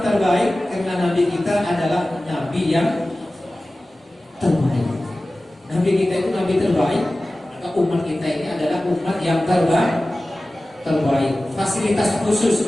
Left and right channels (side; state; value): both; normal; correlation 0.96